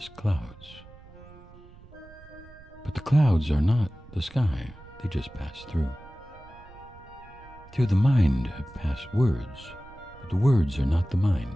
clouds. But the clouds are not the sky, they just pass through. Through the mind pass words, but the words are not the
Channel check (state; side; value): noise; right; rumble, 21 dB below the sound